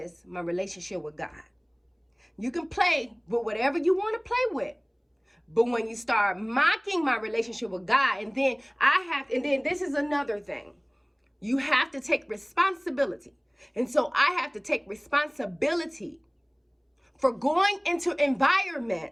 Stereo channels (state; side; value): identical; both; correlation 1.00